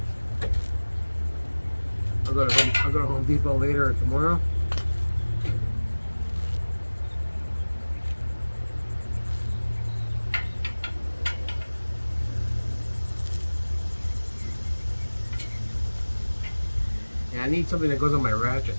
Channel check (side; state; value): both; inverted; correlation -1.00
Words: I'll go to Home Depot later or tomorrow. Yeah, I need something that goes on my ratchet.